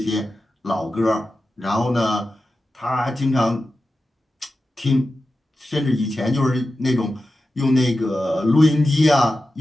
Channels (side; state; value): both; normal; correlation 0.92